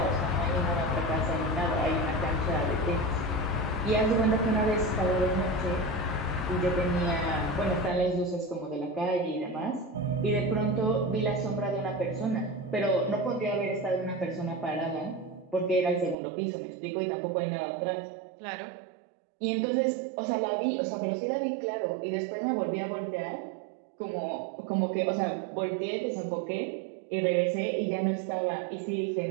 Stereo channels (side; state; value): left; drops out; at 16.2 s